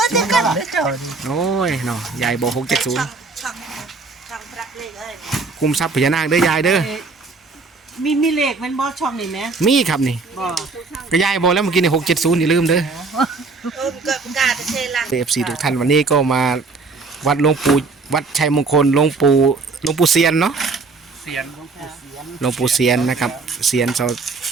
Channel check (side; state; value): left; quieter; 4.1 dB